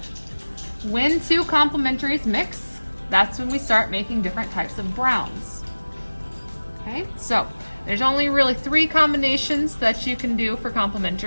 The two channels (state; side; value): inverted; both; correlation -1.00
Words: When 2 complementaries mix, that's when we start making different types of browns. Okay, so there's only really 3 combinations that you can do for